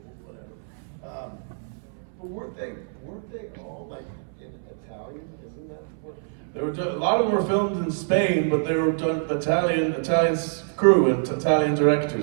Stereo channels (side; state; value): left; silent; 61 dB below the other